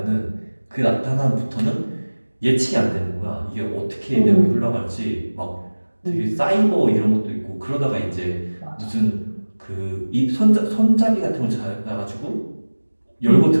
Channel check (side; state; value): both; inverted; correlation -1.00